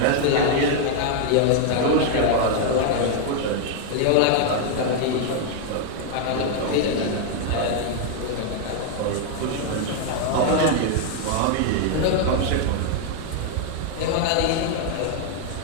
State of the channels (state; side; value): different; both; correlation 0.00